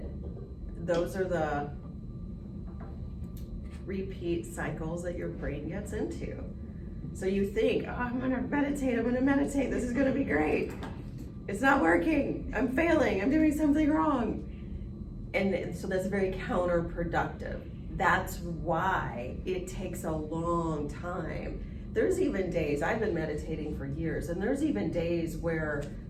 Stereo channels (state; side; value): identical; both; correlation 1.00